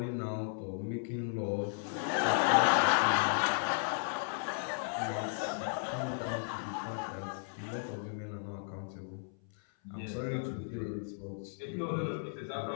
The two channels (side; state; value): right; silent; 55 dB below the other